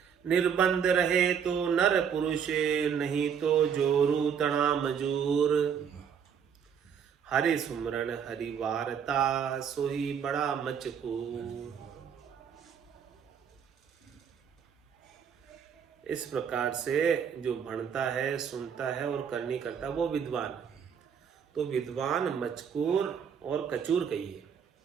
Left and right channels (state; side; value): quieter; left; 7.5 dB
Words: निर्बंध रहे तो नर पुरुष, नहीं तो जोरू तना मजूर। हरि सुमरन हरि वारता सोही बड़ा मचकूर। इस प्रकार से जो भणता है, सुनता है और करनी करता है वो विद्वान। तो विद्वान मचकूर और कचूर कहिए।